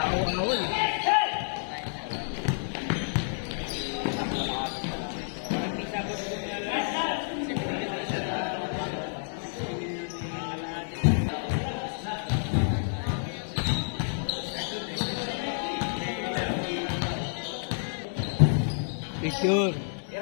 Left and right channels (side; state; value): right; silent; digital silence